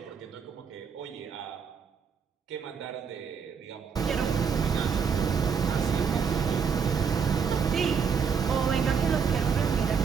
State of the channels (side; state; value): left; quieter; 6.5 dB